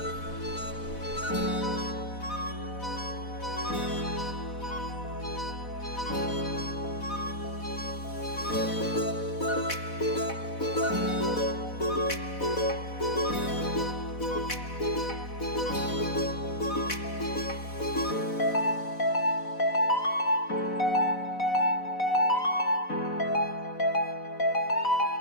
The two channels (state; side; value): late; right; 4.1 ms